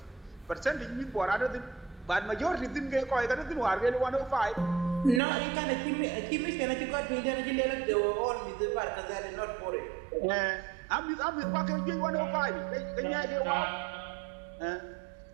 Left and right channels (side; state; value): left; drops out; at 5.2 s